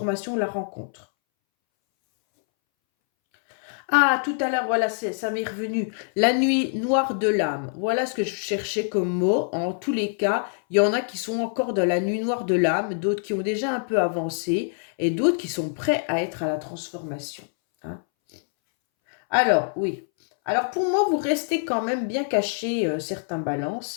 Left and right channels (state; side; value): silent; right; 62 dB below the other